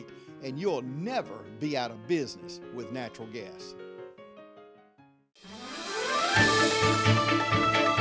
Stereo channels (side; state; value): both; identical; correlation 1.00